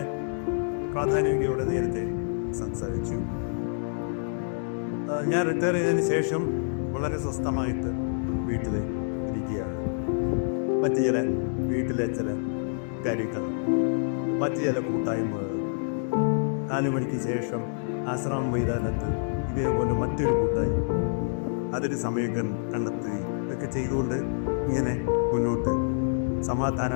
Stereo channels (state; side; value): silent; right; digital silence